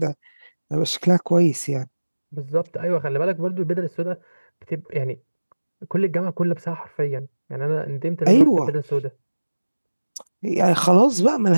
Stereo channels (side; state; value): both; inverted; correlation -1.00